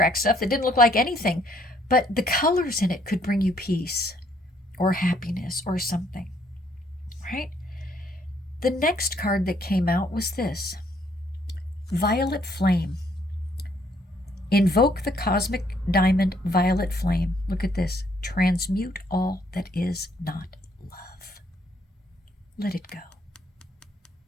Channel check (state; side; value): normal; both; correlation 0.67